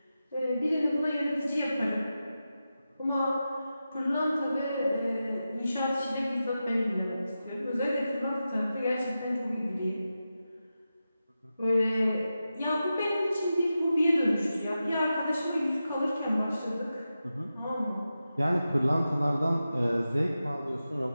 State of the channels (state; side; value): inverted; both; correlation -0.92